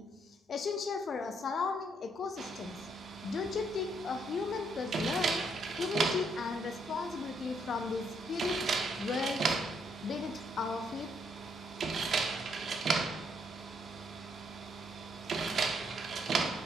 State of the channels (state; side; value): normal; both; correlation 0.72